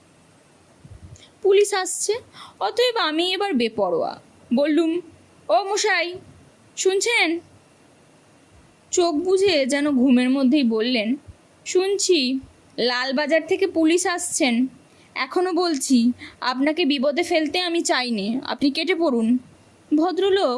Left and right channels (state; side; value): identical; both; correlation 1.00